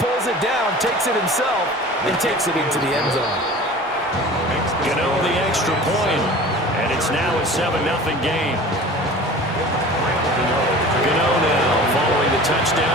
it down, takes it himself, and takes it into the end zone. Gano the extra point, and it's now a 7-0 game. Gano now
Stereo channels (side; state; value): both; normal; correlation 0.40